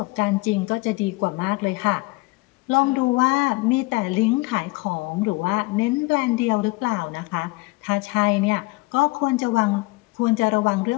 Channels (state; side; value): quieter; right; 23.6 dB